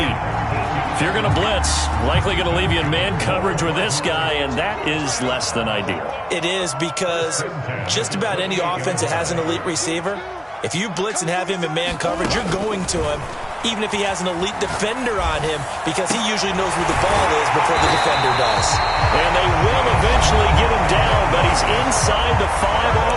If you're going to blitz, likely going to leave you in man coverage with this guy, and that is less than ideal. It is, because just about any offense that has an elite receiver, if you blitz and have him in man coverage, you're going to him, even if he has an elite defender on him, because he usually knows where the ball is before the defender does. And they will eventually get him down, but he's inside the 5 all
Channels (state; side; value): identical; both; correlation 1.00